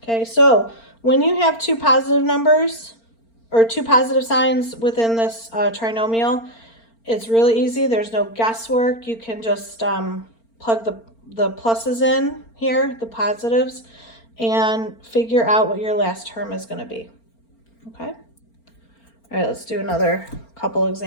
Okay, so when you have two positive numbers or two positive signs within this trinomial, it's really easy. There's no guesswork. You can just plug the pluses in here, the positives, and figure out what your last term is going to be. Okay? All right, let's do another couple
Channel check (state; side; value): late; right; 4.4 ms